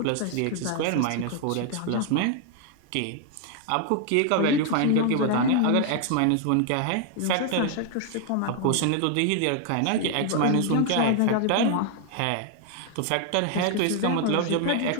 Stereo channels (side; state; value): both; different; correlation 0.00